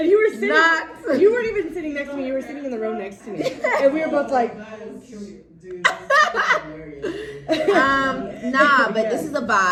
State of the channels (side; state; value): both; identical; correlation 1.00